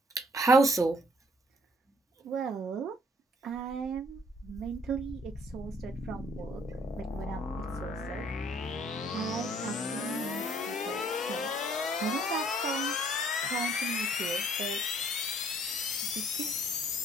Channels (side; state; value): both; normal; correlation 0.62